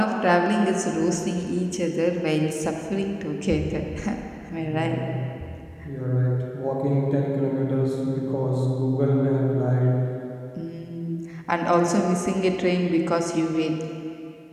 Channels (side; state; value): both; identical; correlation 1.00